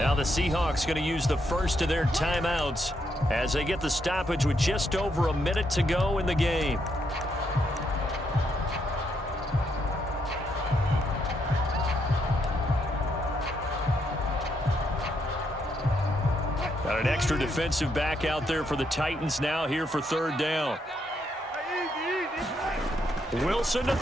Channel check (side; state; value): both; normal; correlation 0.77